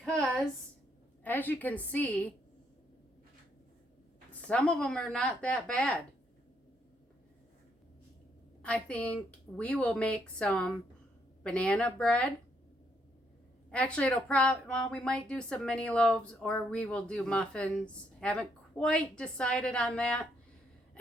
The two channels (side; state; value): both; normal; correlation 0.73